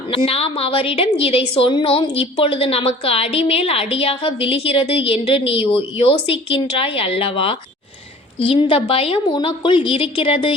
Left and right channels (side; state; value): both; normal; correlation 0.47